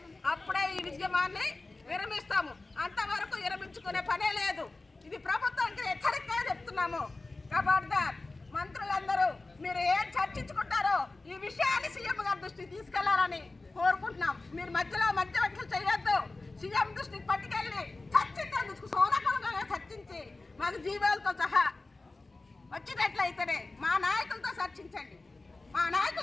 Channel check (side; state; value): right; quieter; 3.3 dB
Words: అప్పుడే ఈ విజయమాన్ని విరమిస్తాము. అంతవరకు విరమించుకునే పనే లేదు. ఇది ప్రభుత్వానికి హెచ్చరికగా చెప్తున్నాము. ఖబర్దార్, మంత్రులందరూ మీరు ఏం చర్చించుకుంటారో ఈ విషయాన్ని సీఎం గారి దృష్టికి తీసుకెళ్లాలని కోరుకుంటున్నాం. మీరు మధ్యవర్తులు చేయొద్దు. సీఎం దృష్టికి పట్టుకెళ్ళి చర్చించేందుకు సోనకంగా చర్చించి మాకు జీవాలతో సహా వచ్చినట్లయితేనే మా నాయకులతో చర్చించండి. మా